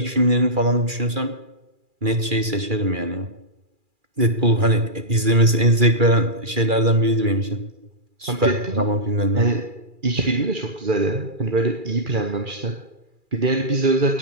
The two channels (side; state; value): left; late; 2.4 ms